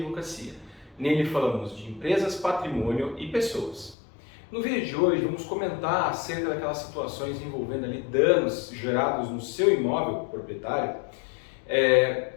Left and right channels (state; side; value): drops out; right; at 4.0 s